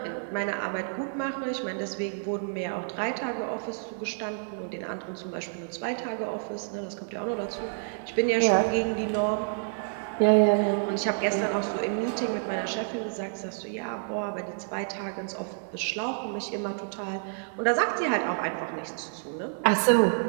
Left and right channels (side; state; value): left; silent; 59 dB below the other